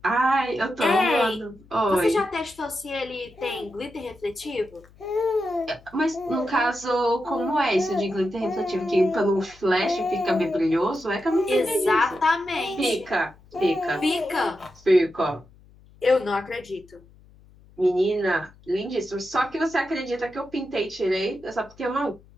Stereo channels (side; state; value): left; noise; hum, 26 dB below the sound